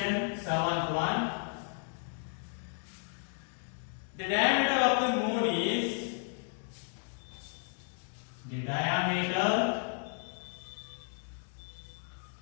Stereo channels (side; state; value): right; silent; 55 dB below the other